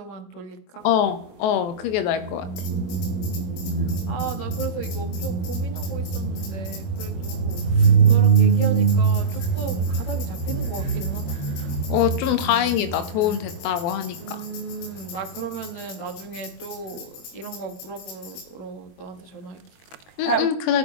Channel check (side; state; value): right; late; 23 ms